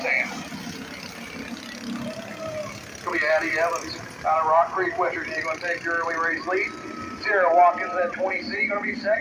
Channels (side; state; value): both; identical; correlation 1.00